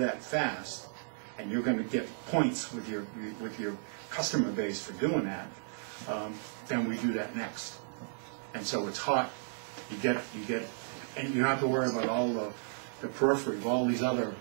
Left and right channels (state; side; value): silent; left; digital silence